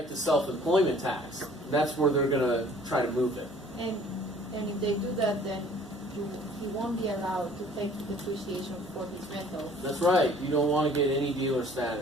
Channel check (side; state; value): both; normal; correlation 0.53